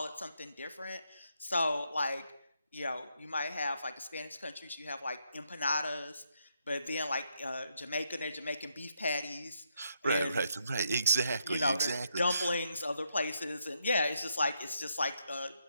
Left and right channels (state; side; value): inverted; both; correlation -0.78